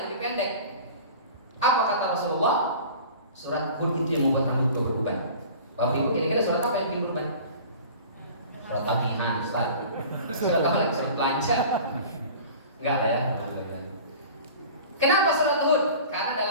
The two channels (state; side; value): inverted; both; correlation -0.41